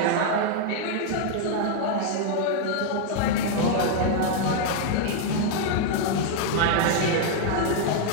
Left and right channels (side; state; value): both; different; correlation 0.00